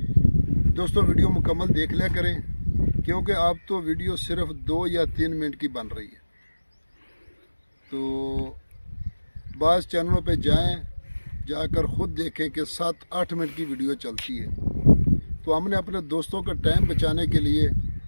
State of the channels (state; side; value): inverted; both; correlation -1.00